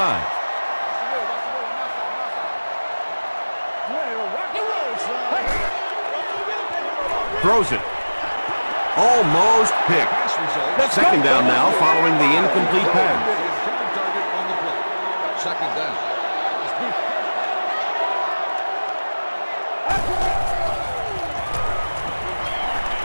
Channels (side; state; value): both; inverted; correlation -1.00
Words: Throws it. Almost picked. Second down now following the incomplete pass. Second down.